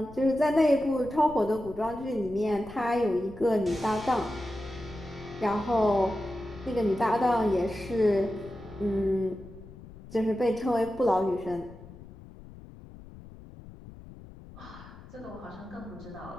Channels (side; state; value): left; noise; rumble, 17 dB below the sound